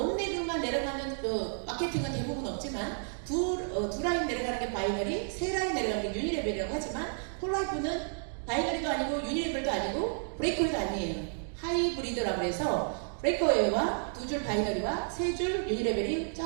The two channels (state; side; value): silent; left; 57 dB below the other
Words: 내려가는 마케팅은 대부분 없지만 두 라인 내려가는 게 바이너리, 3라인 내려가는 게 유니레벨이라고 하지만 폴라이프는 바이너리도 아니고 유니레벨도 아니고 브레이크웨이도 아니에요. 하이브리드라고 해서 브레이크웨이와 2줄 바이너리와 3줄 유니레벨이